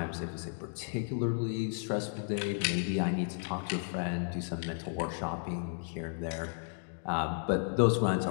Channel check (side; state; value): right; silent; digital silence